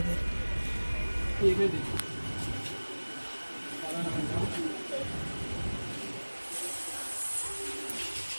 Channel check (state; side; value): inverted; both; correlation -1.00